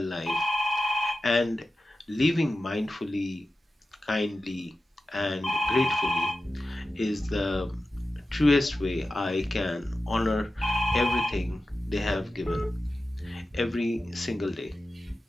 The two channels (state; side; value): normal; both; correlation 0.93